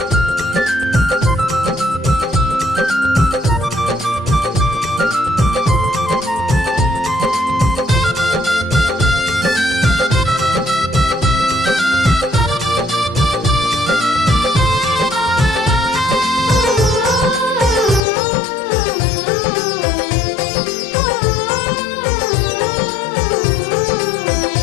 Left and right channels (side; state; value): right; drops out; at 18.0 s